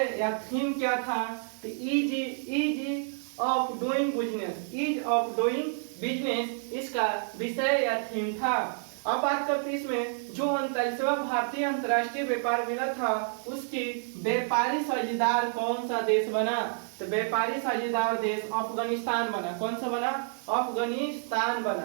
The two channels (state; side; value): silent; left; digital silence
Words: या थीम क्या था? तो ईज ऑफ डूइंग बिजनेस इसका विषय या थीम था। अब बात करते हैं इसमें जो 39वां भारतीय अंतर्राष्ट्रीय व्यापार मेला था उसकी व्यापारी साझेदार कौन सा देश बना? तो व्यापारी साझेदार देश अफगानिस्तान बना। कौन सा बना? अफगानिस्तान